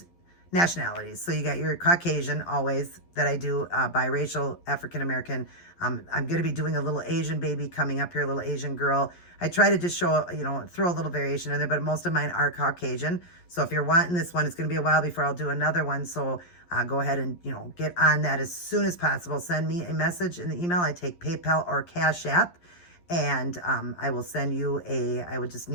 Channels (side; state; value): right; late; 11 ms